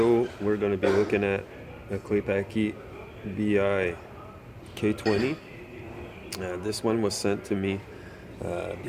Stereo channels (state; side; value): identical; both; correlation 1.00